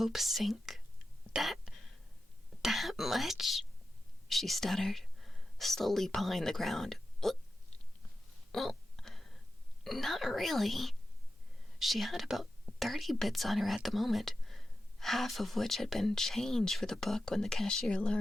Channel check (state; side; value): normal; both; correlation 0.91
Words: sink. That much?" she stuttered, slowly pawing the ground. Well, not really." She had about 30 bits on her at the moment, half of which had been change for the book when the cashier